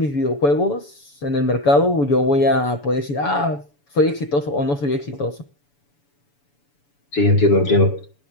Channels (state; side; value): late; right; 7.0 ms